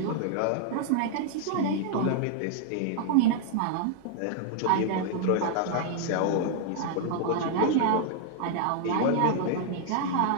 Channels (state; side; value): different; both; correlation -0.01